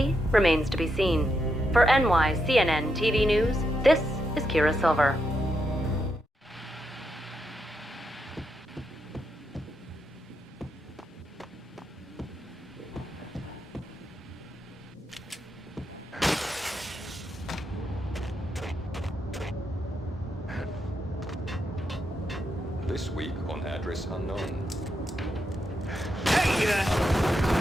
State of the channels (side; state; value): both; normal; correlation 0.83